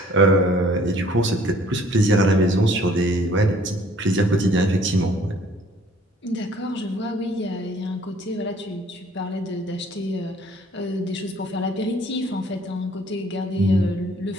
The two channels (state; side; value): normal; both; correlation 0.57